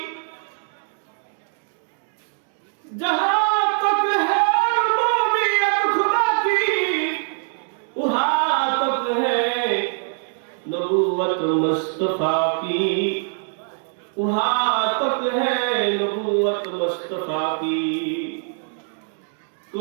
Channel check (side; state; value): left; silent; 64 dB below the other